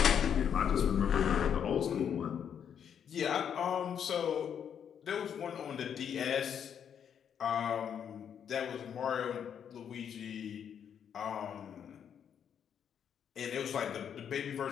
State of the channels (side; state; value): right; quieter; 8.3 dB